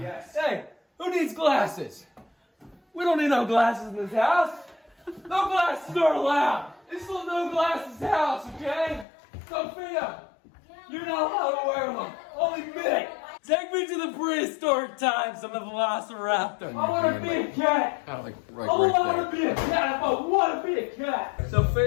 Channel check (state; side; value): drops out; right; at 9.1 s